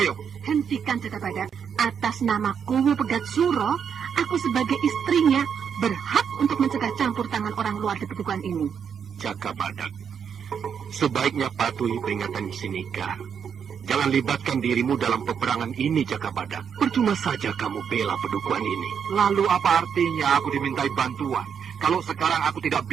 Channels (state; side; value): quieter; left; 7.4 dB